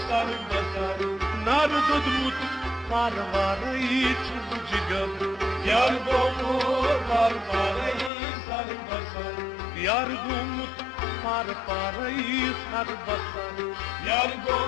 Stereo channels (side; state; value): right; drops out; at 8.1 s